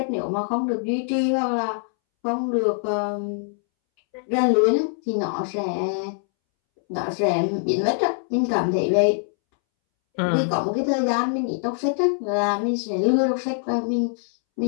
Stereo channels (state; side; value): silent; right; 63 dB below the other